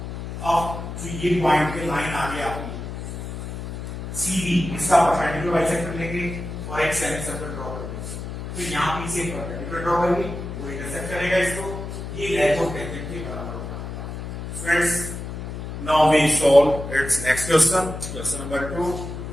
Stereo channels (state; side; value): noise; left; hum, 7 dB below the sound